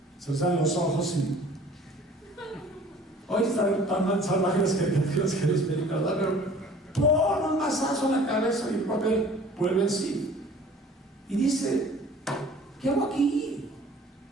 se les dan los ojos y... Hoy están tan salvajes las caricaturas que les películas, ¿verdad? Pero pon un mazazo en la cabeza y el papel vuelve en sí. Y dice: ¿qué hago aquí?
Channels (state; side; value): normal; both; correlation 0.49